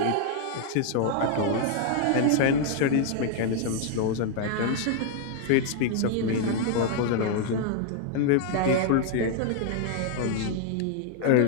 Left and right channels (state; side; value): different; both; correlation 0.00